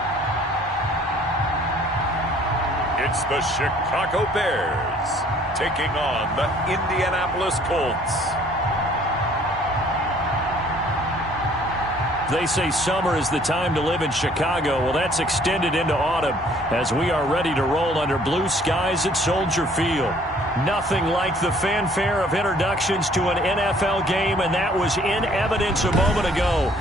It's the Chicago Bears taking on the Indianapolis Colts. They say summer is the time to live in Chicago. Well, that's extended into autumn as we are ready to roll under blue skies at Soldier Field. Nothing like the fanfare of introductions to an NFL game, and that was in evidence a moment ago.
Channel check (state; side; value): normal; both; correlation 0.58